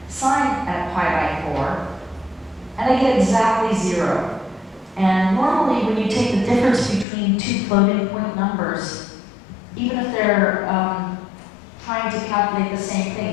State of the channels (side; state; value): right; drops out; at 7.1 s